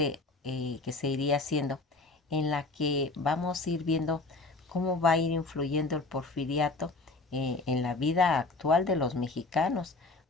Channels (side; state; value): right; quieter; 3.5 dB